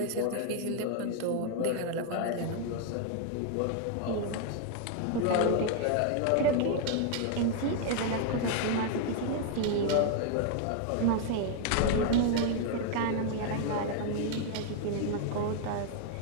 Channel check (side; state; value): both; different; correlation 0.00